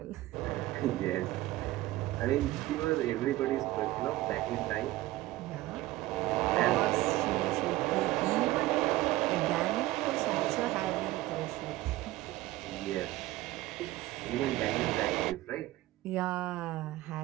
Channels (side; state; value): left; quieter; 17.2 dB